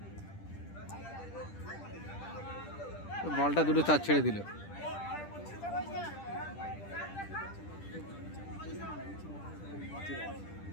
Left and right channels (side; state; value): right; late; 10 ms